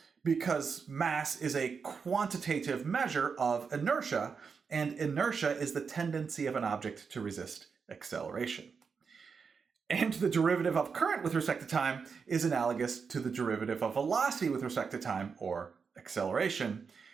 because mass is a quantitative measure of inertia, and inertia is the tendency of an object to resist acceleration. And the derivative of current with respect to time is analogous to the derivative of velocity with respect to time, or acceleration,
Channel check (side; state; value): left; quieter; 5.7 dB